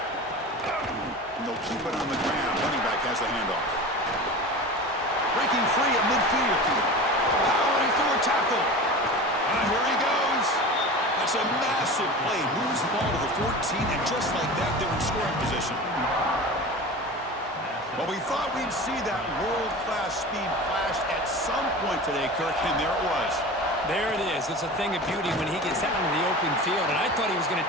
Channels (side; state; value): both; normal; correlation 0.33